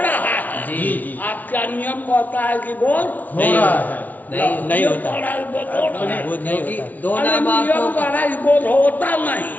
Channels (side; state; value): right; late; 0.083 ms